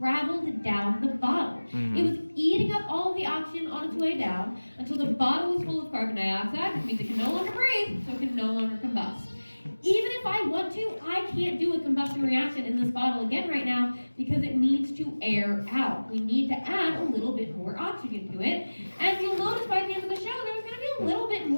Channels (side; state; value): both; inverted; correlation -1.00